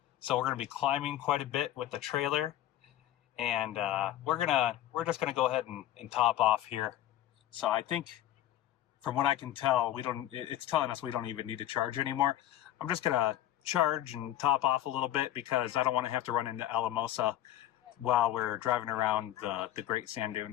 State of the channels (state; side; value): quieter; right; 12.9 dB